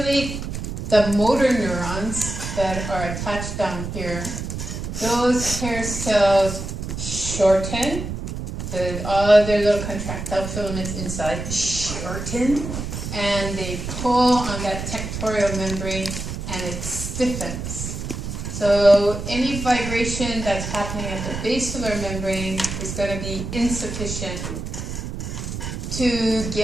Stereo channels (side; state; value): right; noise; rumble, 6 dB below the sound